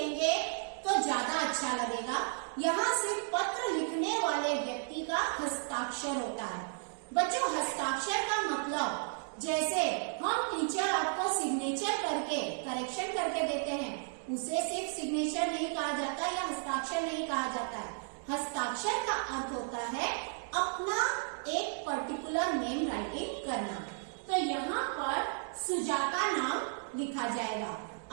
तो ज्यादा अच्छा लगेगा। यहाँ से पत्र लिखने वाले व्यक्ति का हस्ताक्षर होता है। बच्चों, हस्ताक्षर का मतलब जैसे हम टीचर आपको सिग्नेचर करके करेक्शन करके देते हैं, उसे सिर्फ सिग्नेचर नहीं कहा जाता या हस्ताक्षर नहीं कहा जाता है। हस्ताक्षर का अर्थ होता है अपना एक पर्टिकुलर नेम राइटिंग करना। तो यहाँ पर सुजाता नाम लिखा जाएगा।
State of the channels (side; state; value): left; silent; 55 dB below the other